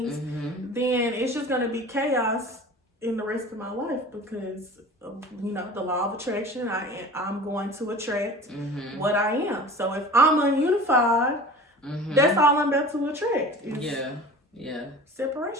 then it's just going to be chaos in the rest of my life because of, you know, the law of attraction. I'm going to attract what I am. So if I'm ununified, that's all I'm about to attract.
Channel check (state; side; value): normal; both; correlation 0.39